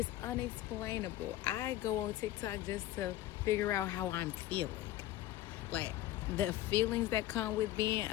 unexplainable. I go on TikTok just to figure out how I'm feeling. Like, the feelings that come with being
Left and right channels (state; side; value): quieter; right; 14.5 dB